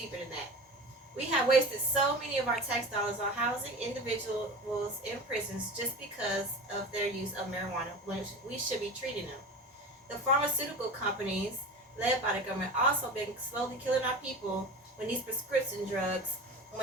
than that. We have wasted so many of our tax dollars on housing individuals in prisons just because of their use of marijuana, when we should be treating them. The pharmaceutical companies, led by the government, also been slowly killing our people when these prescription drugs,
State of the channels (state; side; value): normal; both; correlation 0.33